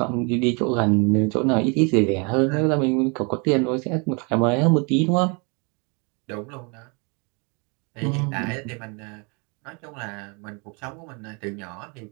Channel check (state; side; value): quieter; left; 32.5 dB